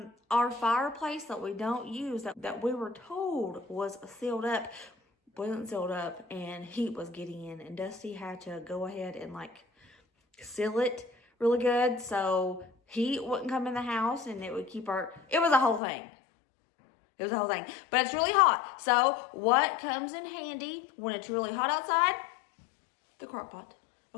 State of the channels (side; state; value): right; drops out; at 15.8 s